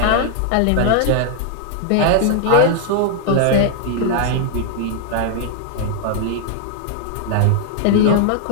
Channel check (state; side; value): different; both; correlation 0.00